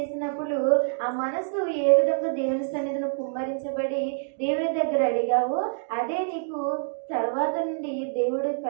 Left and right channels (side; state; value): left; silent; digital silence